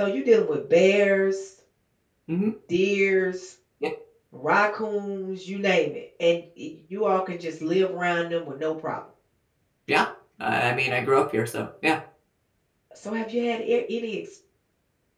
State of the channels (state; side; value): identical; both; correlation 1.00